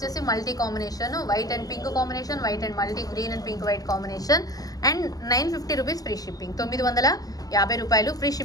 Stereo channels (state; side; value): late; right; 0.17 ms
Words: multi combination, white and pink combination, white and multi green and pink white combination. And 950 rupees free shipping, 950 రూపాయలు free